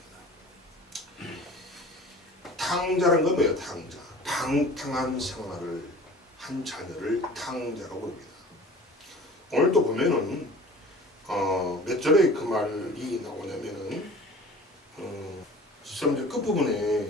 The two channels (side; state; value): both; normal; correlation 0.43